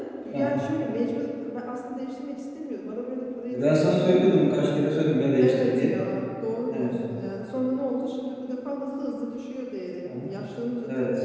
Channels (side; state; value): both; identical; correlation 1.00